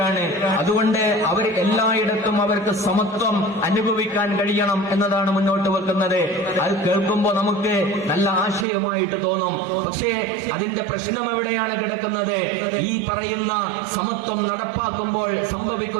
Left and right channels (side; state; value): left; drops out; at 8.7 s